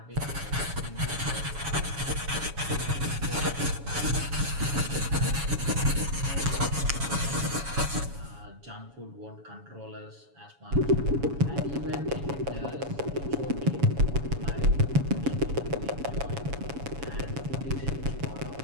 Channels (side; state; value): left; late; 7.1 ms